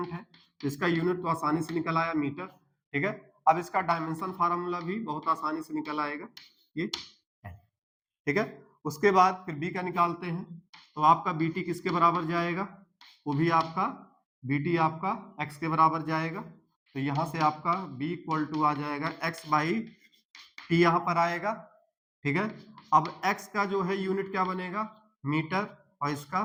है तो इसका यूनिट तो आसानी से निकल आया मीटर, ठीक है। अब इसका डायमेंशन फार्मूला भी बहुत आसानी से निकल आएगा, ये ठीक है। उसके बाद फिर बी का निकालते हैं, तो आपका बीटी किसके बराबर जाएगा, वो भी आपका बीटी आपका एक्स के बराबर जाएगा। तो यहां से आपका b इक्वल टू आ जाएगा x बाई टी, यहां पर आएगा, ठीक है। अब x का जो है यूनिट क्या बनेगा, मीटर, और इसका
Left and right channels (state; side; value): identical; both; correlation 1.00